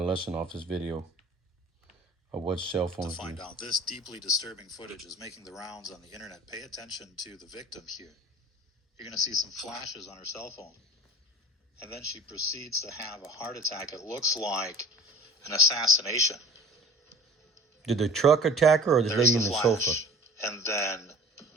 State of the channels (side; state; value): both; normal; correlation 0.43